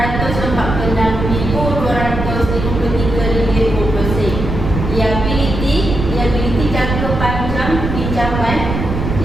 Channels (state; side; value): noise; right; rumble, 4 dB below the sound